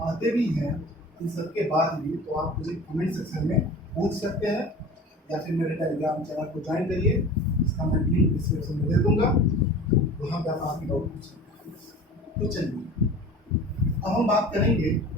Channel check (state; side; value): normal; both; correlation 0.39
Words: आते भी हैं इन सबके बाद भी तो आप मुझे कमेंट सेक्शन में पूछ सकते हैं, या फिर मेरे टेलीग्राम चैनल को ज्वाइन करिए, इसका मैं लिंक डिस्क्रिप्शन में दे दूंगा, वहाँ पर आप आपकी डाउट पूछ सकते हैं। तो चलिए, अब हम बात करेंगे